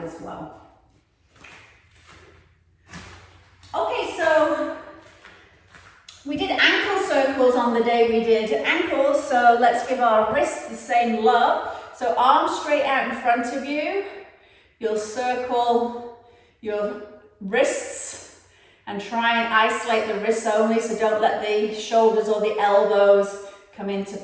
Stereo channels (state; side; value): identical; both; correlation 1.00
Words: as well. Okay, so we did ankle circles on the day we did ankles, so let's give our wrists the same love. So arms straight out in front of you. You'll circle your wrists and try and isolate the wrists only, so don't let the shoulders or the elbows come into